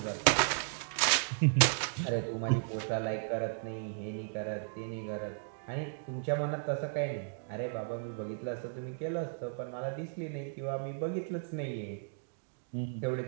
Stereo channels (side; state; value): left; silent; digital silence